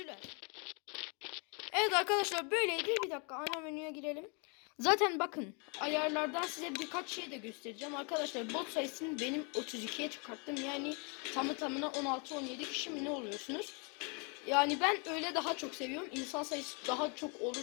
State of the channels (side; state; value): right; quieter; 34.7 dB